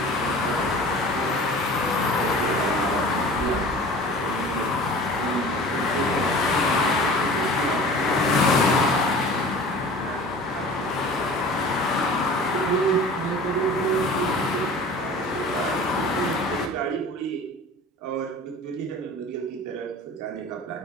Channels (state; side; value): normal; both; correlation 0.41